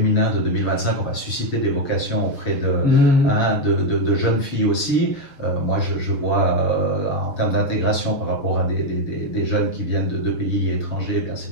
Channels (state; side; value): late; right; 7.1 ms